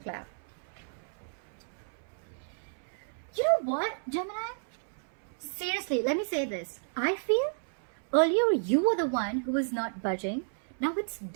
clap. You know what, Gemini? Seriously, let me say this. I feel earlier you were the one who was not budging. Now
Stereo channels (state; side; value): silent; left; 57 dB below the other